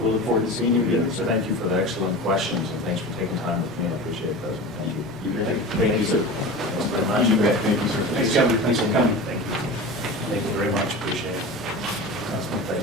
look forward to seeing you again, sir. Thank you for the excellent questions, and thanks for taking time with me. I appreciate that. Thank you. You bet. Thank you, sir. Thanks very much. You bet. Thank you, sir. Thanks, Governor. Thanks for coming. Thank you. Thank you very much. Appreciate it.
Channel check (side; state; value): both; normal; correlation 0.32